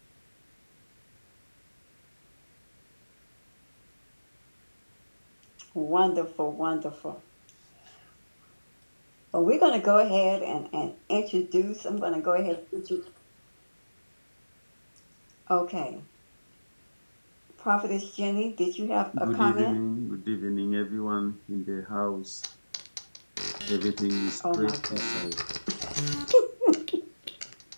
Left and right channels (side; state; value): both; inverted; correlation -1.00